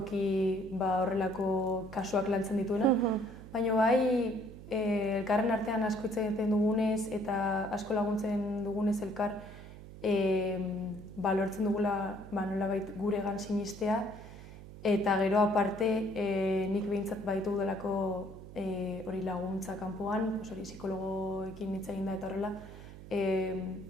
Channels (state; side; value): noise; right; hum, 15 dB below the sound